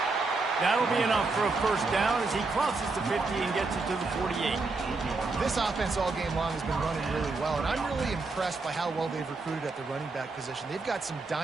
That'll be enough for a first down as he crosses the 50 and gets it to the 48. This offense all game long has been running really well, and I'm really impressed by how well they've recruited at the running back position. They've got some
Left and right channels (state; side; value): quieter; left; 3.7 dB